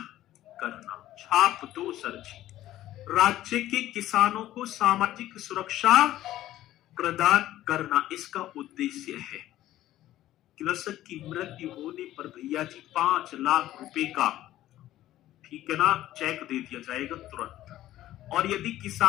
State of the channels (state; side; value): quieter; right; 14.1 dB